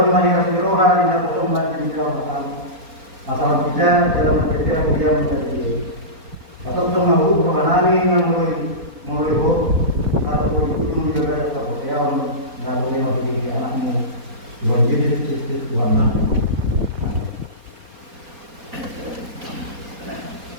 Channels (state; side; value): late; left; 4.1 ms